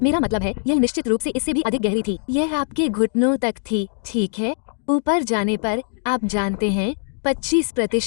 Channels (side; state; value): right; silent; digital silence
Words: मेरा मतलब है, यह निश्चित रूप से इससे भी अधिक गहरी थी। यह आपके घुटनों तक थी, ठीक है। ऊपर जाने पर, आप जानते हैं,